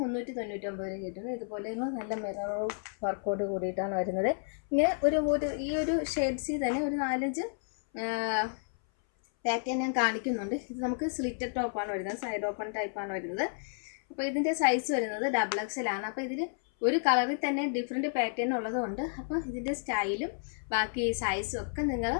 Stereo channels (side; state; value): right; silent; 57 dB below the other